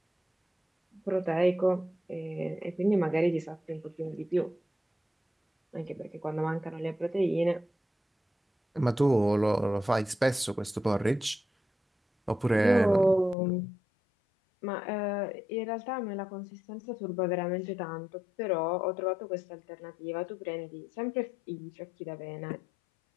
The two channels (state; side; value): drops out; right; at 13.4 s